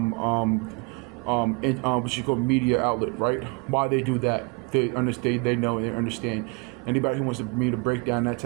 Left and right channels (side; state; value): left; quieter; 29.8 dB